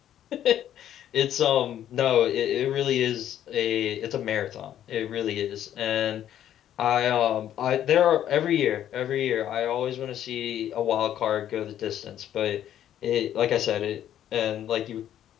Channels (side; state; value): right; quieter; 11.0 dB